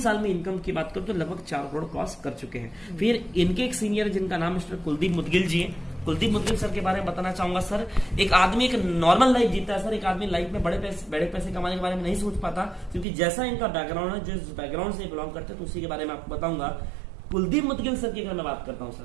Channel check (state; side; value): drops out; left; at 13.1 s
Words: में इनकम की बात करो तो लगभग 4 करोड़ क्रॉस कर चुके हैं। फिर इनके एक सीनियर, जिनका नाम मिस्टर कुलदीप मुदगिल जी है। कुलदीप मुदगिल सर के बारे में बताना चाहूंगा सर। एक आदमी एक नॉर्मल लाइफ जीता है सर। एक आदमी लाइफ में बड़े पैसे कमाने के बारे में नहीं सोच पाता, क्योंकि जैसा इनका बैकग्राउंड है, जिस बैकग्राउंड से बिलोंग करते हैं, तो उसी के बारे में आपको बताऊंगा। कुलदीप मुदगिल सर की अगर मैं बात करता हूं